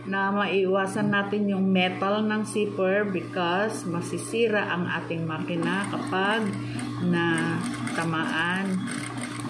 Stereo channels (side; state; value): both; identical; correlation 1.00